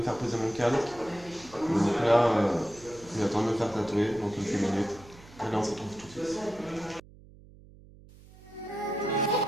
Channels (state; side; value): noise; right; hum, 22 dB below the sound